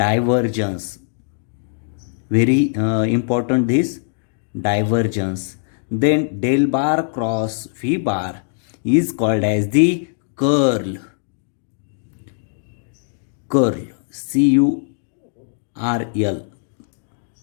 very important this divergence. Then del bar cross V bar is called as the curl. CURL,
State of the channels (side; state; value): right; silent; digital silence